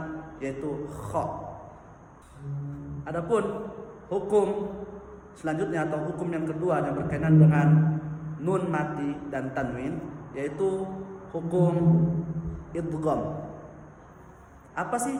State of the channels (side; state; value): both; identical; correlation 1.00